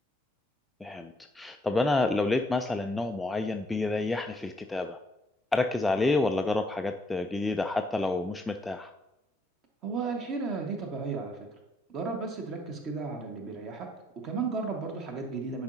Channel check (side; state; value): both; normal; correlation 0.71